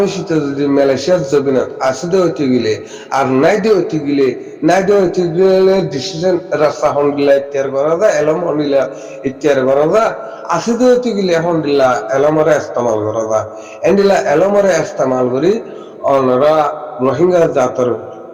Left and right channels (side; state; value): both; identical; correlation 1.00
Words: যদি মালয়েশিয়ার জবিনত আসতে হইতে গেলে আর নাইদে হইতে গেলে ডিসিশন রাস্তা হন্ডিলা ইত্যার করা যায় এলম হন্ডিলা ইত্যার করা যায় আসতে হইতে গেলে হন্ডিলা এলমরে ইস্তেমাল করা যায় এন্ডিলা এলমরে ইস্তেমাল করি অনরা রোহিঙ্গা জাতর